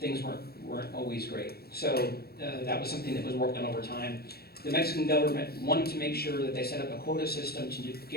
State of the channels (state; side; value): late; right; 0.46 ms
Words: weren't always great. So that was something that was worked on over time. The Mexican government wanted to make sure that they set up a quota system to